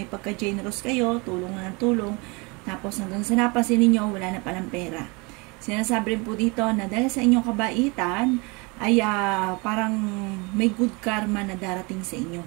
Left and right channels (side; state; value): left; quieter; 28.3 dB